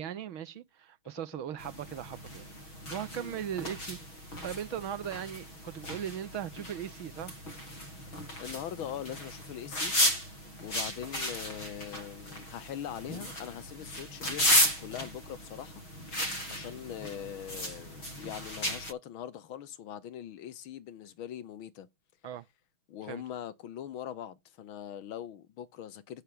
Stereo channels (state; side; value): late; right; 6.3 ms